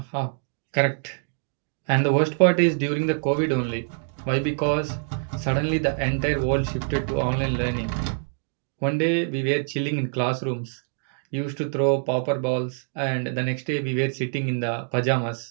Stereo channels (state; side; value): silent; left; 62 dB below the other